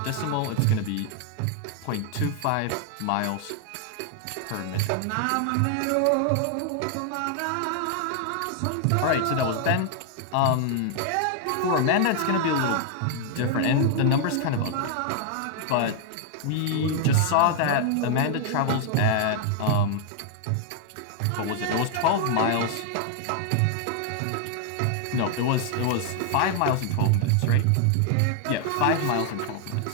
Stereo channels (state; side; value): different; both; correlation 0.00